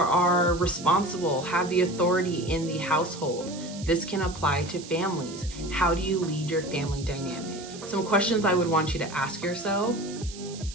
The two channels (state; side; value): noise; right; hiss, 15 dB below the sound